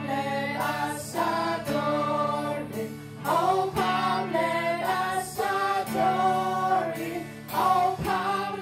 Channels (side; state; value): both; identical; correlation 1.00